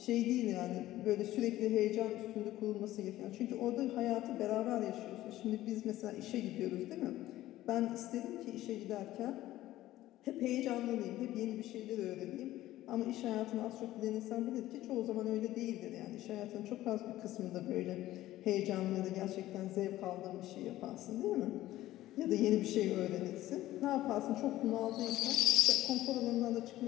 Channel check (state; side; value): quieter; right; 15.1 dB